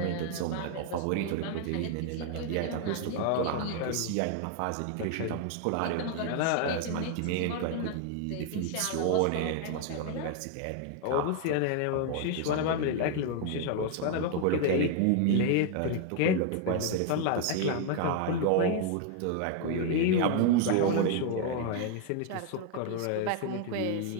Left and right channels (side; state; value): both; different; correlation 0.00